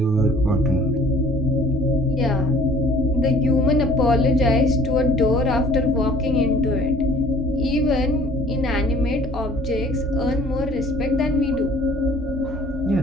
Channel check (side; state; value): both; normal; correlation 0.53